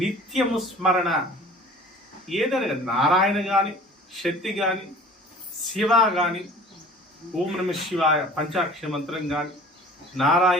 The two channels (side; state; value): both; normal; correlation 0.45